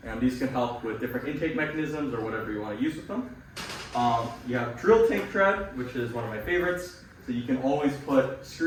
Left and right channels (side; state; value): both; identical; correlation 1.00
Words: and these can help with different intake mechanisms or whatever you want to use with them. You have drill tank tread, which is one of my favorites. So you can always put